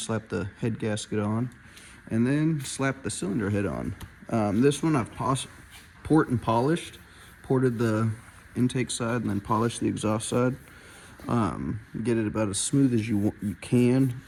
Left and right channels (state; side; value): identical; both; correlation 1.00